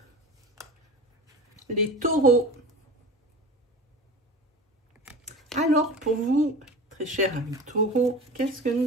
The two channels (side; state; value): both; normal; correlation 0.33